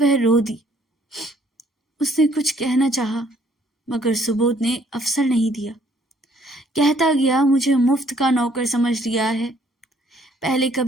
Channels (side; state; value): both; normal; correlation 0.63